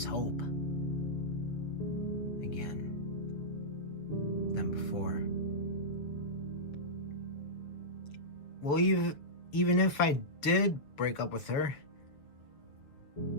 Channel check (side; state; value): right; late; 7.1 ms